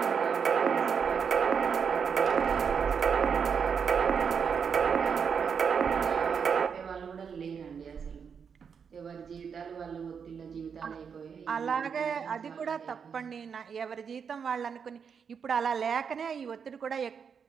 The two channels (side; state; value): left; quieter; 6.6 dB